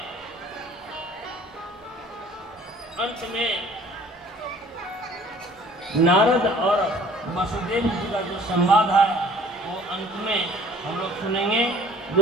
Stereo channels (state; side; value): normal; both; correlation 0.52